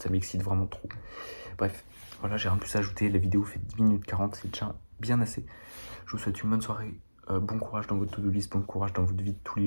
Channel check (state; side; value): inverted; both; correlation -1.00